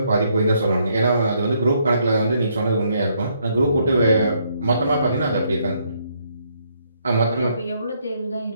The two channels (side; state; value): both; inverted; correlation -0.72